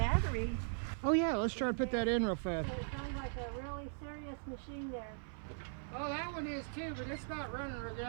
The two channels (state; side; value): silent; left; 52 dB below the other